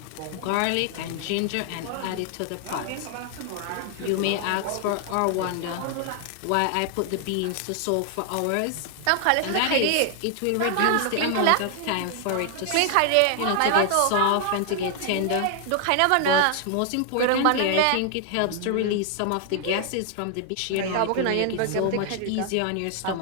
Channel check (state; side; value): different; both; correlation 0.00